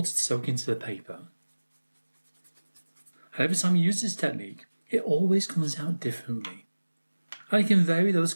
to soak into the paper. And every time you use this technique, it always comes out differently. And you can vary those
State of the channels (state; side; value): inverted; both; correlation -1.00